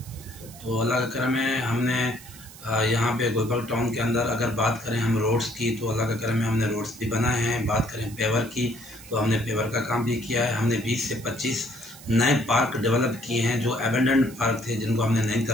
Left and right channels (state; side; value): noise; right; hiss, 18 dB below the sound